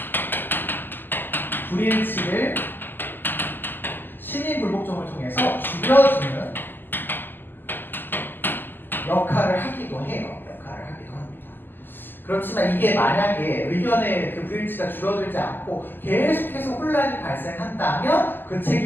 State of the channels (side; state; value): right; late; 0.092 ms